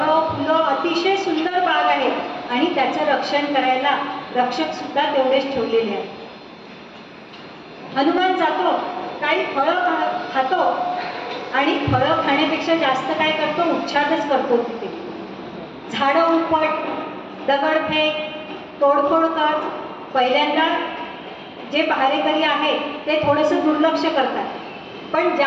फुलं अतिशय सुंदर बाग आहे आणि त्याचं रक्षण करायला रक्षक सुद्धा तेवढेच ठेवलेले आहेत. हनुमान जातो, काही फळं खातो आणि फळं खाण्यापेक्षा जास्त काय करतो, उच्छादच करतो. तिथे झाडं उपट, दगडफेक, तोडफोड कर. पहिल्यांदा जे पहारेकरी आहे ते थोडंसं दुर्लक्ष करतात, पण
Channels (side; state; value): both; identical; correlation 1.00